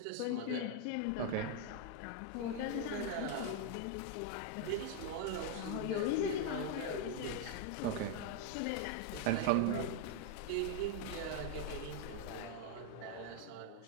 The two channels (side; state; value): both; different; correlation 0.00